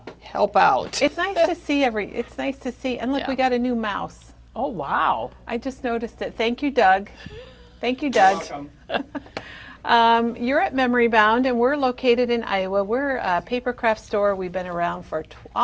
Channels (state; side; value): identical; both; correlation 1.00